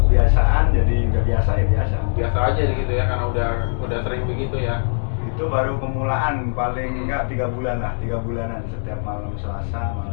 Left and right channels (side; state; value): right; silent; digital silence